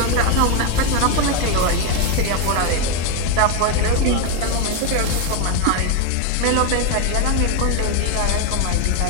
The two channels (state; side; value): different; both; correlation 0.02